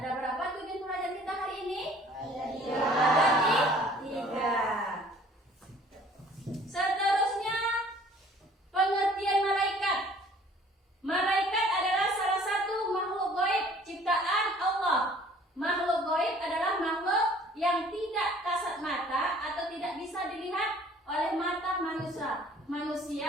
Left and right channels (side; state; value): both; normal; correlation 0.53